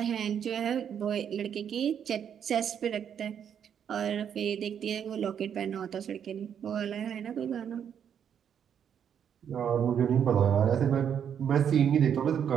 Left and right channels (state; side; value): quieter; left; 8.4 dB